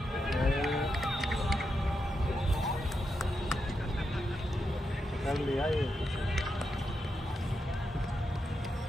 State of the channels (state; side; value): normal; both; correlation 0.85